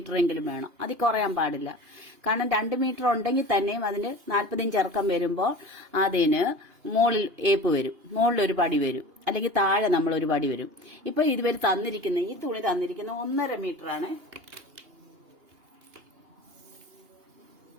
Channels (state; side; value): late; left; 2.8 ms